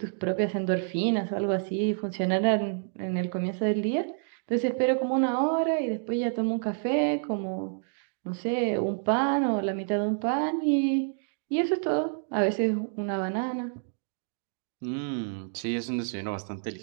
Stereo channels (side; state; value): left; silent; digital silence